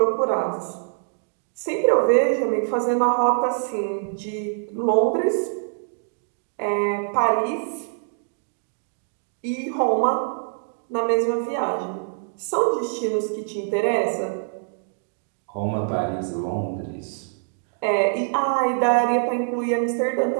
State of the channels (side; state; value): left; silent; digital silence